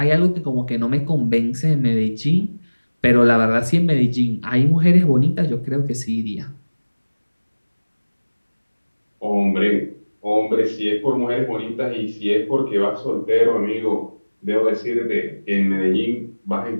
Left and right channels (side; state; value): both; inverted; correlation -1.00